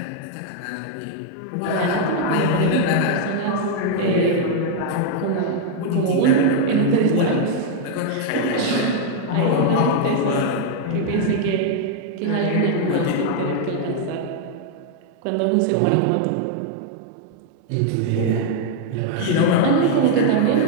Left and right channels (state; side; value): different; both; correlation 0.00